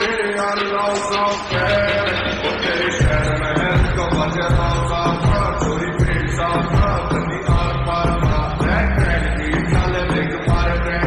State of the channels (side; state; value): both; identical; correlation 1.00